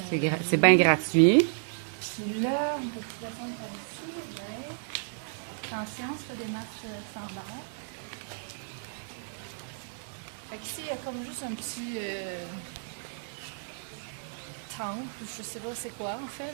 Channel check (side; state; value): left; silent; digital silence